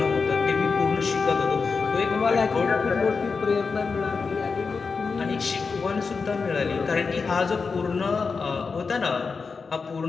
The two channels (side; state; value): right; quieter; 4.9 dB